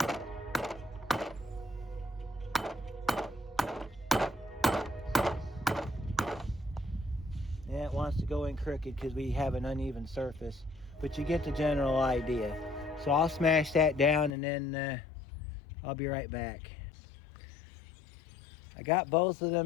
Yeah, it wants to go in crooked because we have an uneven surface, but you get the general idea. So I'll smash that down and then I'll be right back. I got both of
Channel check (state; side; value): drops out; right; at 14.3 s